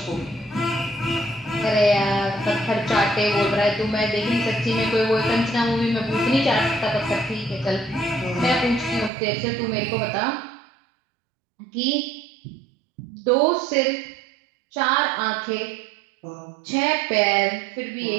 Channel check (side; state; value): left; drops out; at 9.1 s